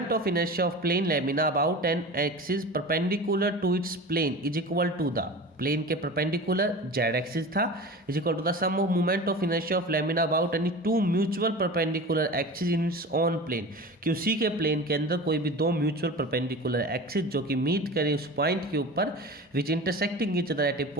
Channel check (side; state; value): both; normal; correlation 0.33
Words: of inertia of plane lamina about an axis perpendicular to its plane is equal to the plane के परपेंडिकुलर जेड एक्सिस था is equal to the sum of movement of inertia of lamina about any two mutual perpendicular axis in its on plane, कि उसी के plane के अंदर कोई भी दो म्यूचुअल परपेंडिकुलर एक्सिस जो कि मीट करें उस पॉइंट के ऊपर which intersecting each other at a